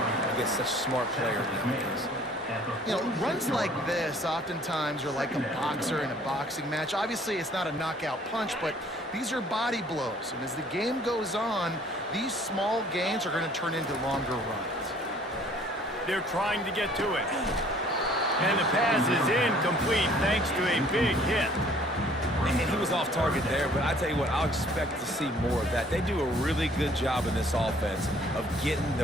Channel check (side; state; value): both; normal; correlation 0.56